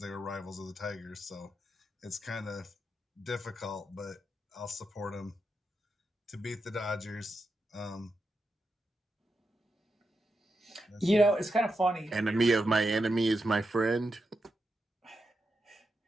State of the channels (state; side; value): normal; both; correlation 0.86